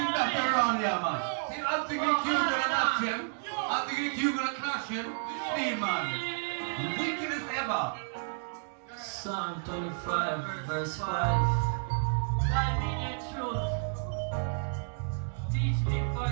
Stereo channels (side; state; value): left; silent; digital silence